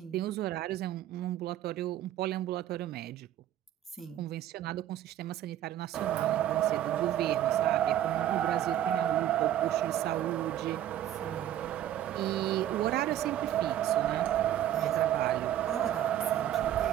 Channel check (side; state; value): left; quieter; 11.9 dB